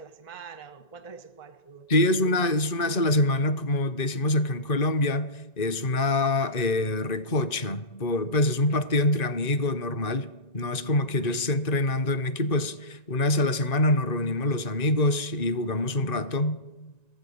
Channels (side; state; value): right; late; 1.9 ms